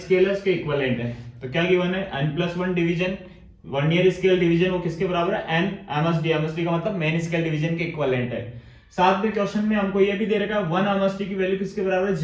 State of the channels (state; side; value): identical; both; correlation 1.00